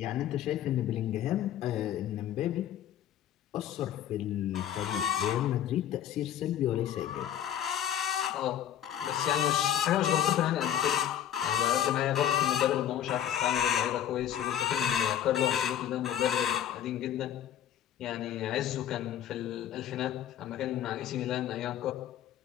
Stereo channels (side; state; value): right; quieter; 10.5 dB